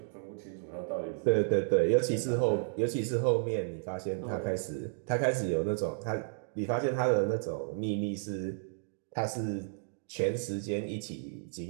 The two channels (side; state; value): left; silent; digital silence